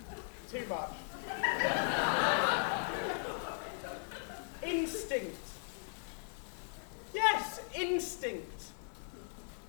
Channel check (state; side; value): silent; right; digital silence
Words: Too much. Instinct. Yes, instinct.